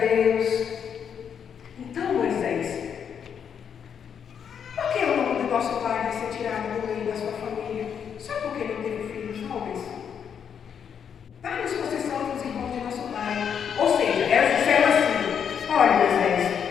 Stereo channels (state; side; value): quieter; right; 7.7 dB